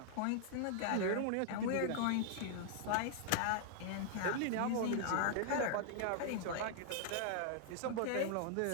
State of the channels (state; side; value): different; both; correlation -0.01